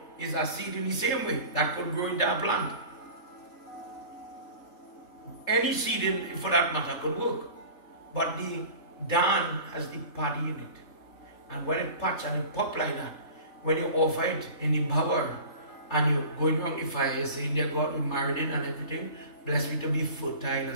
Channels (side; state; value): right; late; 3.3 ms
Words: is a seed in the same way. That could grow into a plant. Any seed, for that matter, could work. But the dan has the paddy in it. And when it patch and it pop like that, when you offer it in the bower and you're going around the fire, you're saying, dear God, we married in and everything, bless me to be fertile